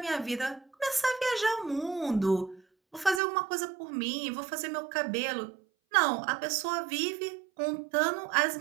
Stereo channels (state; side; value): drops out; left; at 3.2 s